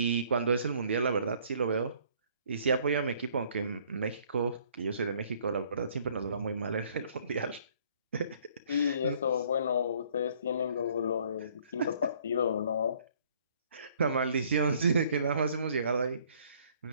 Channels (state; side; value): inverted; both; correlation -0.60